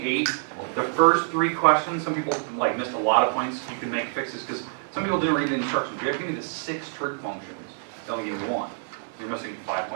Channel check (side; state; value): left; silent; 61 dB below the other